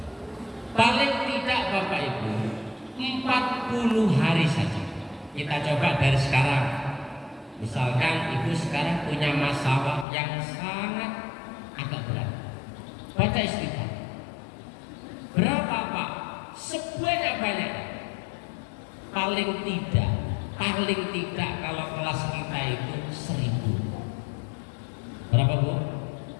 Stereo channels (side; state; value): right; drops out; at 10.1 s